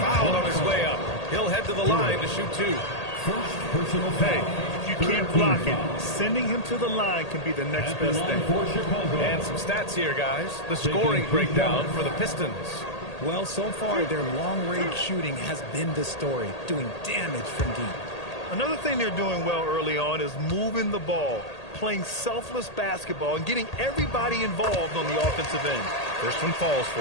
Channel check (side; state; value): right; late; 1.8 ms